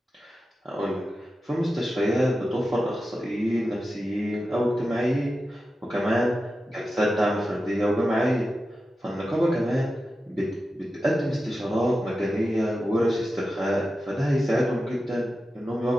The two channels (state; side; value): normal; both; correlation 0.92